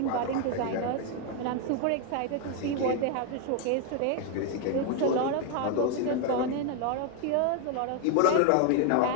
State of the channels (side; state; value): both; different; correlation 0.00